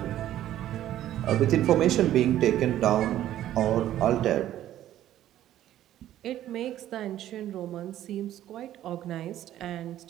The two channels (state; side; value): quieter; left; 12.6 dB